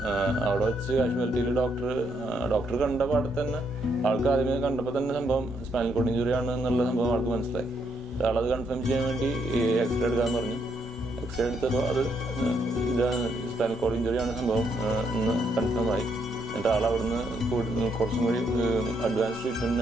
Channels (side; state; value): both; normal; correlation 0.75